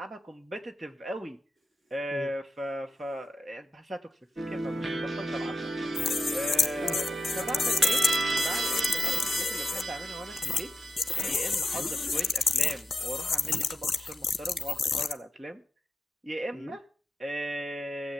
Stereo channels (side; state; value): both; normal; correlation 0.89